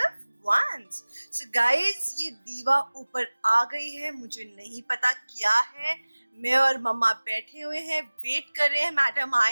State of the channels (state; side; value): inverted; both; correlation -1.00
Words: once. So guys, ये दीवा ऊपर आ गई है, मुझे नहीं पता क्या है। मैं और मम्मा बैठे हुए हैं, वेट कर रहे हैं मैडम